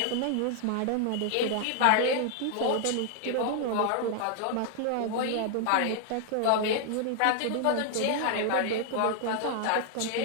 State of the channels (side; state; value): both; different; correlation 0.00